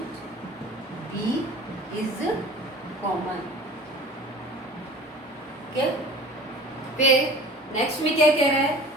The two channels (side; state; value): both; normal; correlation 0.42